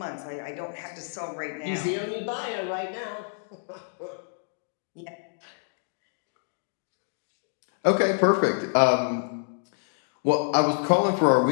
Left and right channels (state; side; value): silent; right; digital silence